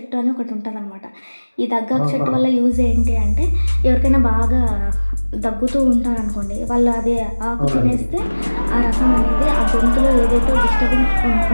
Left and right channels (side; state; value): both; inverted; correlation -1.00